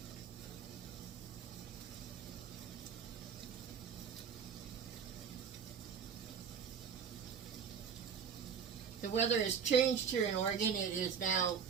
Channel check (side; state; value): left; quieter; 6.9 dB